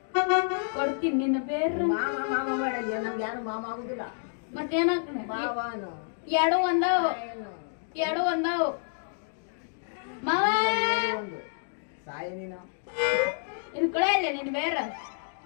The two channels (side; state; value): right; silent; digital silence